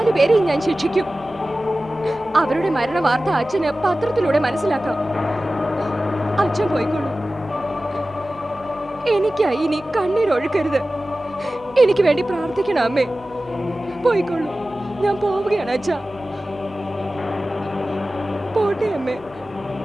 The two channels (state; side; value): noise; right; hum, 25 dB below the sound